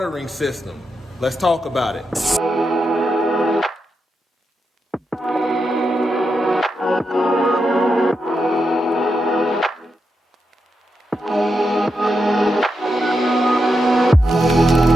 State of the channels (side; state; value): both; normal; correlation 0.85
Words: system. Let's talk about it.